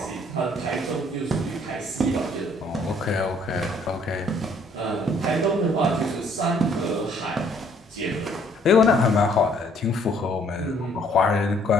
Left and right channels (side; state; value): both; normal; correlation 0.62